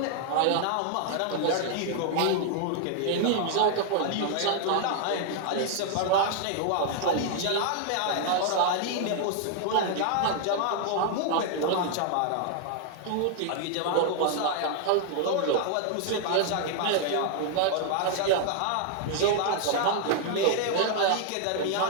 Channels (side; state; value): both; different; correlation 0.00